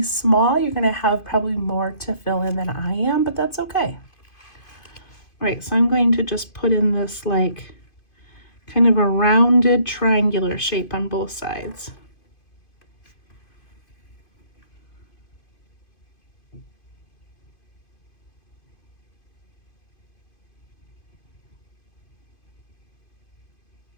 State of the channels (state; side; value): late; right; 2.5 ms